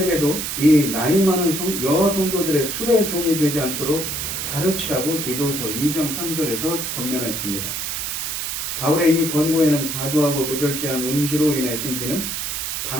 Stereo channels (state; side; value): noise; right; hiss, 3 dB below the sound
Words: 이 나이 많은 여성도들의 술의 종이 되지 않도록 가르치라고 디도서 2장 3절에서 권면했습니다. 바울의 이 권고에는 과도하고 무절제한 음주로 인해 생기는